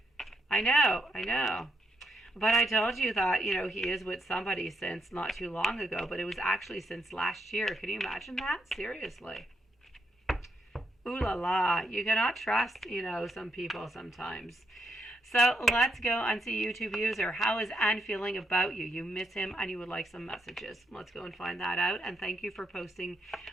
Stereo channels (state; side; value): normal; both; correlation 0.78